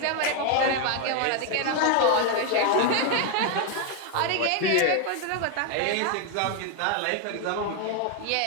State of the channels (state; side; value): different; both; correlation 0.01